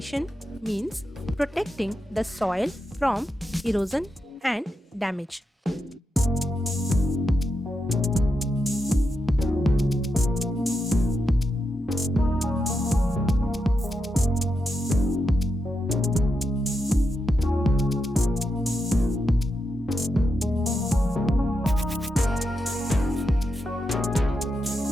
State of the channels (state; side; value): normal; both; correlation 0.86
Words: means protecting the soil from erosion and damage.